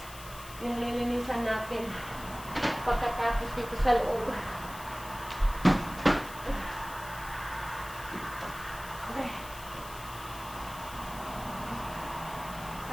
yung lilinisan natin pagkatapos dito sa loob.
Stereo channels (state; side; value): noise; left; hiss, 15 dB below the sound